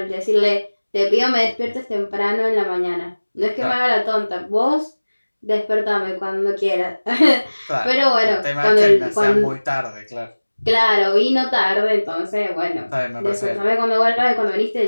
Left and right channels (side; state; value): both; inverted; correlation -1.00